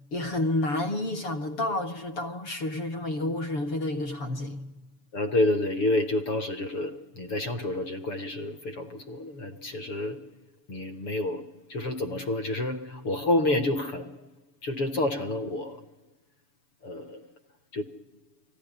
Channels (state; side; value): late; right; 7.0 ms